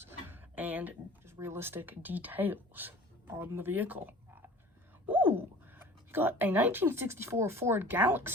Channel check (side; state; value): both; normal; correlation 0.45